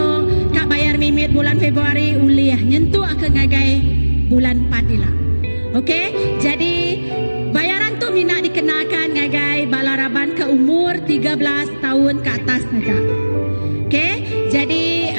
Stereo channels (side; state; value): both; inverted; correlation -1.00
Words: Kak bayar mimit bulan Februari uliah nyentuh ke ngagai bulan 4 ila. Okey, jadi bayaran tu minat dikenakan ngagai bala Raban ke umur 13 tahun ke atas saja. Okey, jadi